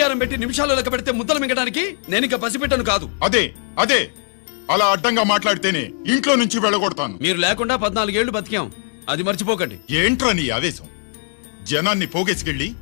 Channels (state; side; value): silent; right; 56 dB below the other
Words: పెట్టి నిమిషాలు లెక్క పెడితే ముద్దలు మింగడానికి నేను ఇంకా పసిపిట్టను కాదు. అదే అదే అలా అడ్డంగా మాట్లాడితేనే ఇంట్లో నుంచి వెళ్ళగొడతాను. మీరు లేకుండా 14 ఏళ్లు బతికాం, అది మర్చిపోకండి. ఏంట్రా నీ ఆవేశం? జనాన్ని పోగేసుకెళ్ళి